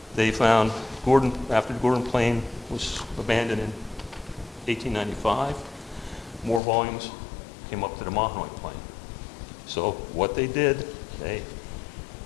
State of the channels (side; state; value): right; drops out; at 6.6 s